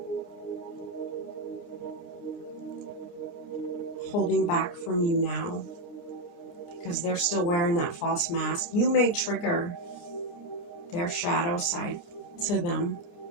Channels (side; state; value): right; late; 29 ms